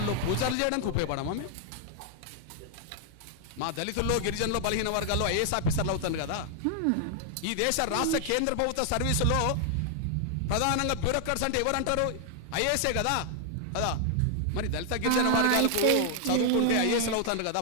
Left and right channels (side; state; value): both; different; correlation 0.00